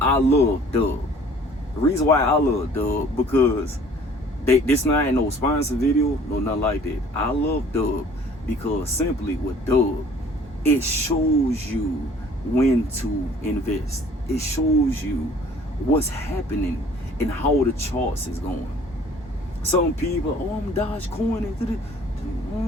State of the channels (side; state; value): both; normal; correlation 0.53